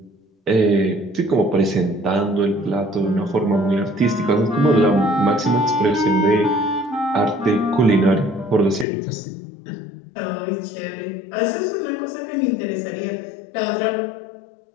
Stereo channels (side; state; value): right; drops out; at 8.8 s